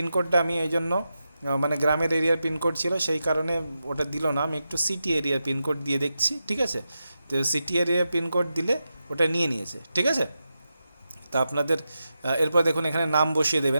আমি এই জন্য মানে গ্রামের এরিয়ার পিনকোড ছিল সেই কারণে ওটা দিল না, আমি একটু সিটি এরিয়ার পিনকোড দিয়ে দেখছি। ঠিক আছে, তো সিটি এরিয়ার পিনকোড দিলে ওটা নিয়ে নিয়েছে। ঠিক আছে, তা আপনাদের এরপর দেখুন এখানে নাম বসিয়ে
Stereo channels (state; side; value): inverted; both; correlation -0.89